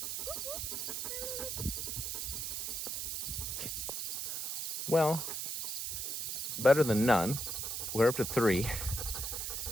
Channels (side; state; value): right; noise; hiss, 2 dB below the sound